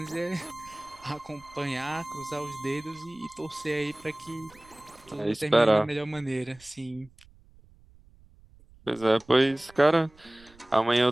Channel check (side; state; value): right; noise; rumble, 26 dB below the sound